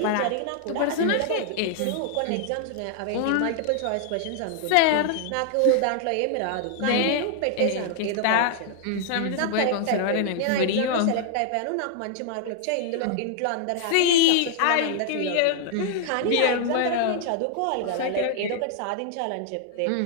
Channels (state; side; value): different; both; correlation 0.00